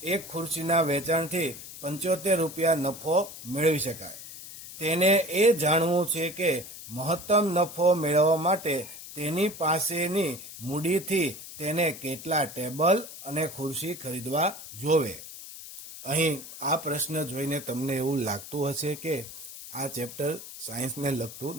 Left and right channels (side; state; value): left; noise; hiss, 13 dB below the sound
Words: એક ખુરશીના વેચાણથી 75 રૂપિયા નફો મેળવી શકાય. તેને એ જાણવું છે કે મહત્તમ નફો મેળવવા માટે તેની પાસેની મૂડીથી તેને કેટલા ટેબલ અને ખુરશી ખરીદવા જોવે. અહીં આ પ્રશ્ન જોઈને તમને એવું લાગતું હશે કે આ ચેપ્ટર સાયન્સને લગતું